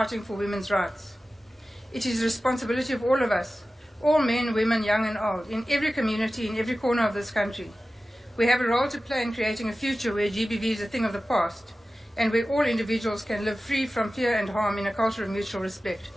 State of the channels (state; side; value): normal; both; correlation 0.95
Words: for women's rights. It is the responsibility of all of us, all men, women, young and old, in every community, in every corner of this country. We have a role to play in creating a future where GBV is a thing of the past, and where all individuals can live free from fear and harm in a culture of mutual respect.